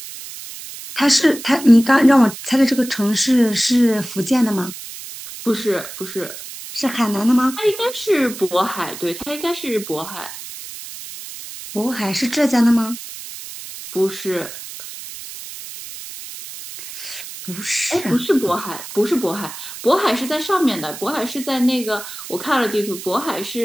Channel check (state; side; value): noise; right; hiss, 12 dB below the sound